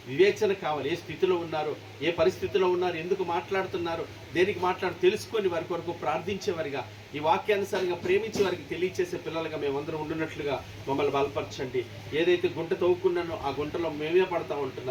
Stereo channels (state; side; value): identical; both; correlation 1.00